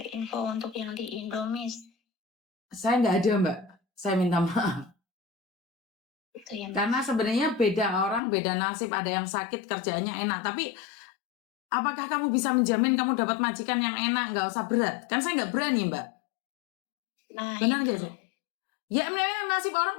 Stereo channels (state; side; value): drops out; right; at 8.2 s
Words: info untuk yang di Indo, Miss? Saya nggak ada, Mbak. Saya minta maaf. Itu ya, karena sebenarnya beda orang, beda nasib. Ada yang sakit kerjaannya enak, tapi apakah kamu bisa menjamin kamu dapat majikan yang enak, nggak usah berat? Kan saya nggak berani, Mbak. Nah, benar nggak sih? Ya memang nasib